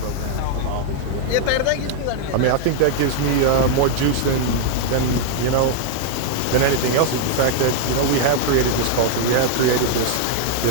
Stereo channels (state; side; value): different; both; correlation 0.00